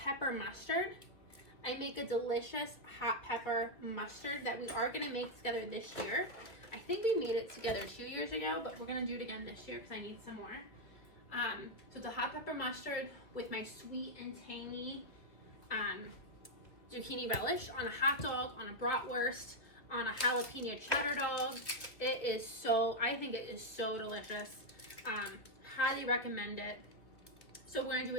mustard. I make a delicious hot pepper mustard that we are going to make together this year. I think we made it together 2 years ago, but we're going to do it again this year because I need some more. So it's a hot pepper mustard with my sweet and tangy zucchini relish on a hot dog, on a bratwurst, on a jalapeno cheddar dog. It is so, I think it is so delicious. Highly recommend it. So we're going to do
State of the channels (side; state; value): right; late; 2.0 ms